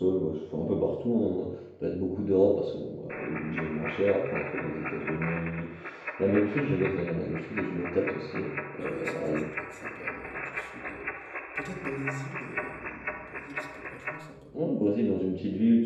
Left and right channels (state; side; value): identical; both; correlation 1.00